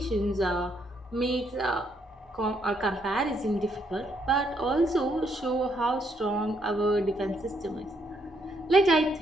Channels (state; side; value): normal; both; correlation 0.73